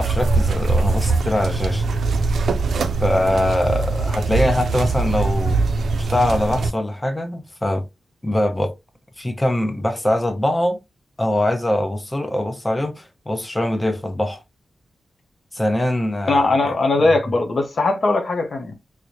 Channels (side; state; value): both; normal; correlation 0.89